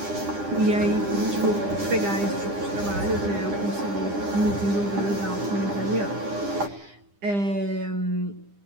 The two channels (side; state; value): left; late; 9.9 ms